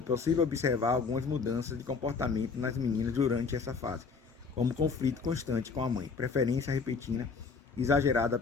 possível observar algumas mudanças de comportamento nas meninas durante essa fase, como conflito constante com a mãe, preferência repentina exagerada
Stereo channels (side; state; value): right; quieter; 5.0 dB